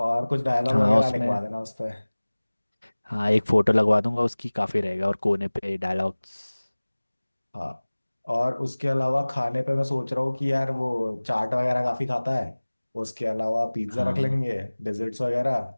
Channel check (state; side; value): inverted; both; correlation -1.00